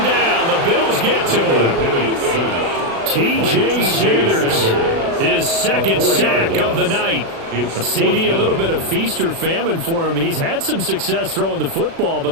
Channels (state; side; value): late; left; 36 ms